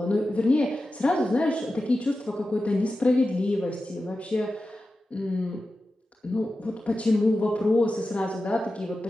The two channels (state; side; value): normal; both; correlation 0.93